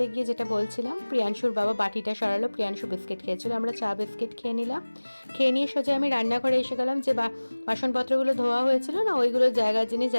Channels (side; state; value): both; inverted; correlation -1.00